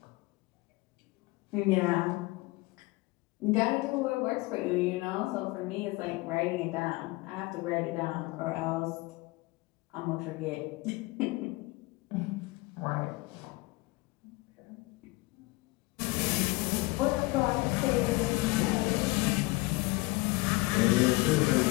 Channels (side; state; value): right; quieter; 23.0 dB